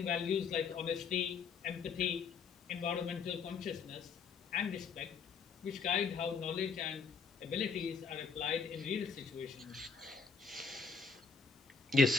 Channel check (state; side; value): quieter; right; 5.4 dB